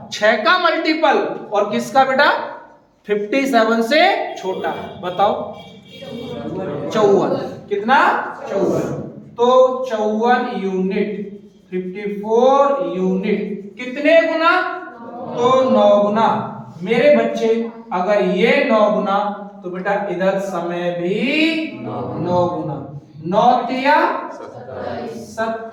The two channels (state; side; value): identical; both; correlation 1.00